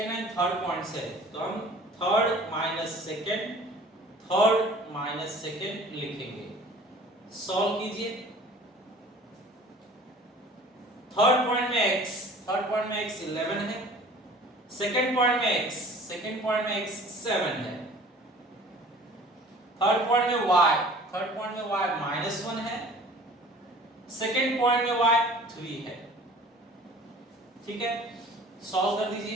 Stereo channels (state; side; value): normal; both; correlation 0.47